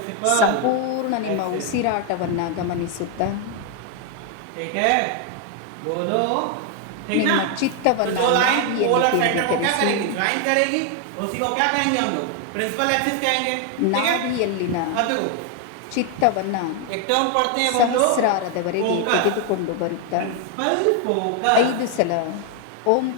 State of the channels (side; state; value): both; different; correlation 0.00